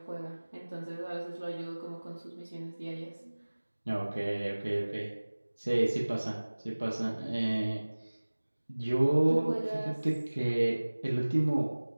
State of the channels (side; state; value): both; inverted; correlation -1.00